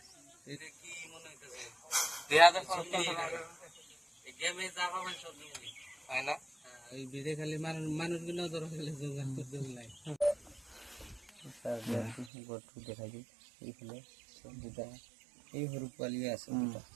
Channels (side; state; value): left; drops out; at 12.3 s